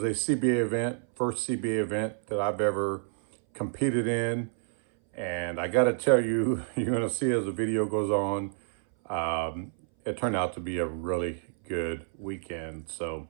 a CBA event, first CBA event that I've ever competed in. And I gotta tell you, you're gonna see as the video goes on, it turned out to be a really good weekend. So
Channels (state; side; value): silent; left; 59 dB below the other